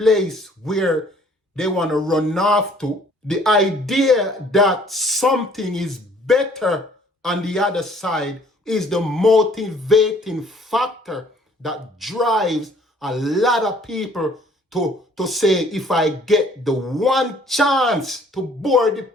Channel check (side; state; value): both; normal; correlation 0.58